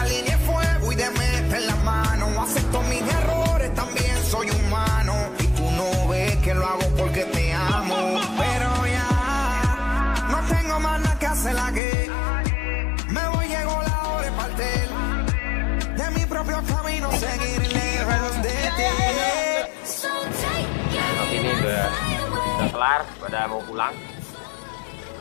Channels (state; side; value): drops out; right; at 11.8 s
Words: línea de fuego y de meter la mano. Acepto mis errores, también soy humano. Y tú no ves que lo hago porque te amo. Pero ya no tengo más nada que hacer aquí. Me voy, llegó la hora de partir. De mi propio camino, seguir lejos de ti. Tapi ini udah kelar, pada mau pulang.